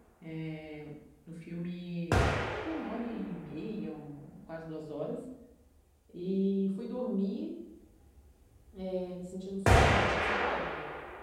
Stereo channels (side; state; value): both; identical; correlation 1.00